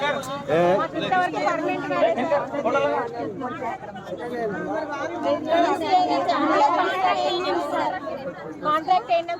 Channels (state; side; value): identical; both; correlation 1.00